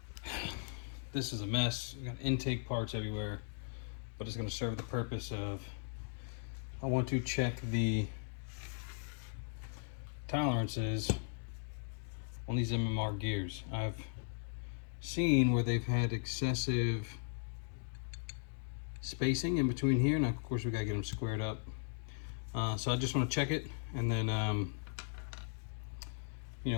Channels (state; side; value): silent; right; digital silence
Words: This is a mess. We got intake parts everywhere, but it's going to serve the purpose of, I want to check the tolerances on these MMR gears. I've seen where they've had excessive spacing in between here. Now, of course, we got to get them squared up. So I just want to check it and then, you